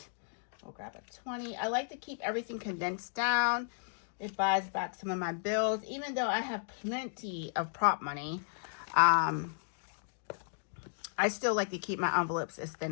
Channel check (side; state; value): right; silent; digital silence